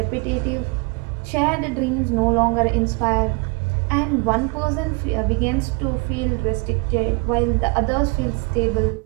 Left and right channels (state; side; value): quieter; left; 29.2 dB